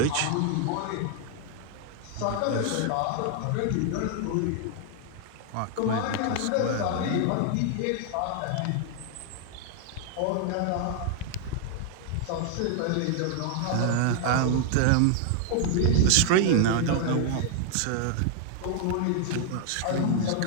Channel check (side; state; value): both; different; correlation 0.00